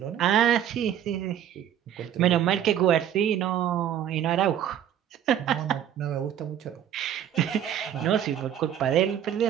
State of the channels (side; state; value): left; quieter; 10.1 dB